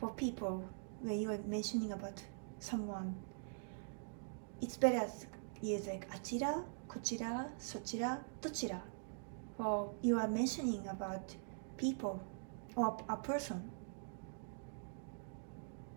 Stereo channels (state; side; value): silent; left; digital silence